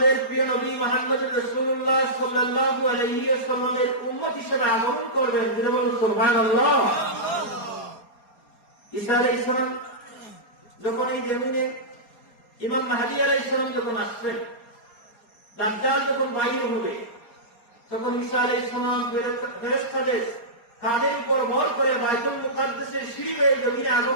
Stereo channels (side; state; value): right; late; 4.3 ms